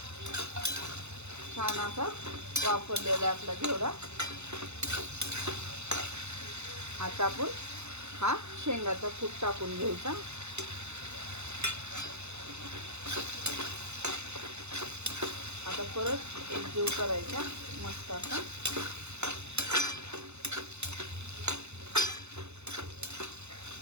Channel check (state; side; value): late; left; 0.81 ms